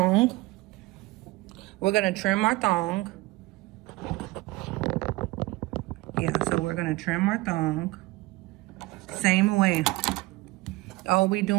We're gonna trim our thong. Yeah, so we're gonna trim our thong. Same way. All we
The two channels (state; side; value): quieter; left; 20.6 dB